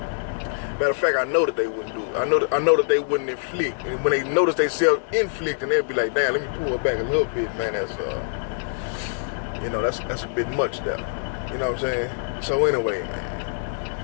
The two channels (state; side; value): silent; right; 62 dB below the other